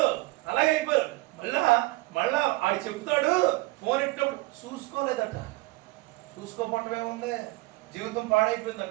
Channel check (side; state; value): left; quieter; 21.2 dB